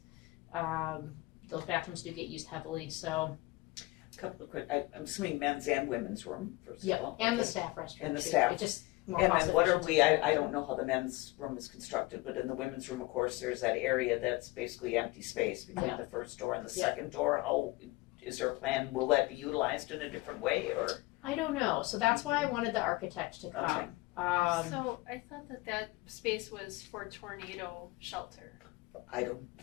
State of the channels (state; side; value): quieter; right; 21.9 dB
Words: Those bathrooms do get used heavily. So A couple of quick, I'm assuming men's and women's room, first of all. and the Okay. staff restroom. And the too. staff. It just more And cost then what are efficient we, to do. I don't know how the men's room is constructed, but in the women's room, of course, there's that area that's basically empty space between Yeah. the first door and the Yeah. second door. How, is there a plan, will that be utilized in a different way, or? I don't know. So that's why I wanted the architect to come. So I thought that space was for tornado shelter. I don't